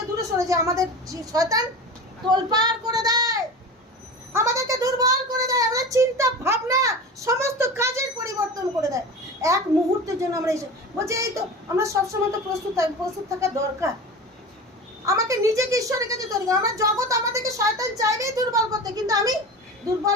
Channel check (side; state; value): both; normal; correlation 0.31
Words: দূরে সরে যাই, আমাদের শয়তান তোলপাড় করে দেয়, আমাদেরকে দুর্বল করে দেয়, আমাদের চিন্তা ভাবনা সমস্ত কাজের পরিবর্তন করে দেয়। এক মুহূর্তের জন্য আমরা বলছি এই তো আমরা সবসময় তো প্রস্তুত থাকা দরকার। আমাকে নিজেকে ঈশ্বরের কাছে তৈরি করা। আমার জগৎ আমাদেরকে শয়তান চাইবেই দুর্বল করতে, কিন্তু আমি